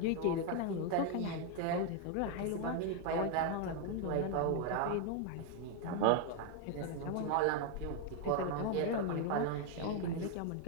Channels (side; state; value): both; different; correlation 0.00